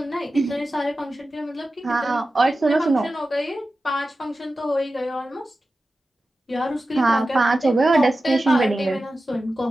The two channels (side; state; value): both; normal; correlation 0.93